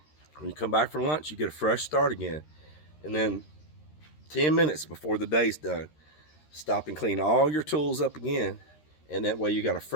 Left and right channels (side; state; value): right; late; 13 ms